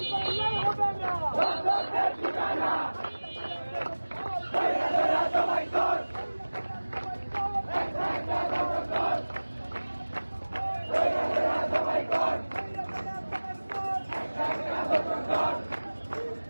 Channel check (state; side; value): inverted; both; correlation -1.00